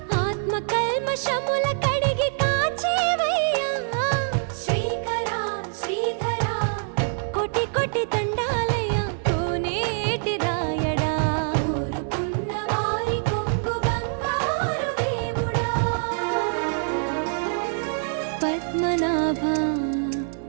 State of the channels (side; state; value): left; silent; 62 dB below the other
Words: ఆత్మ కల్మషముల కడిగి కాచేవయ్యా శ్రీకరా శ్రీధరా కోటి కోటి దండాలయ్యా కోనేటి రాయడా కోరుకున్న వారి కొంగు బంగారు దేవుడా పద్మనాభ